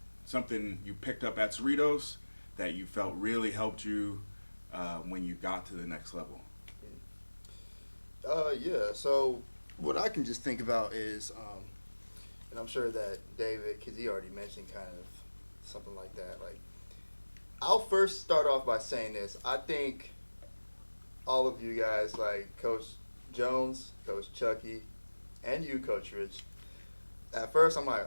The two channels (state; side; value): inverted; both; correlation -1.00